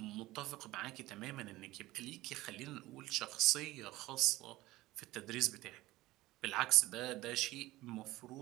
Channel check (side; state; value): left; quieter; 18.0 dB